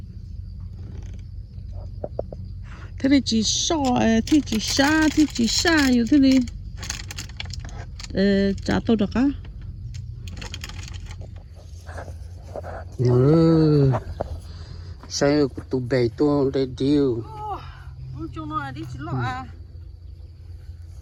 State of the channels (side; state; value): both; identical; correlation 1.00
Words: Thế này chỉ so, thế chỉ xa, yêu thế này. Chả tôi được á. Sao tụi bè tôi đây điêu. Chúng nó đi chỉ lọ à.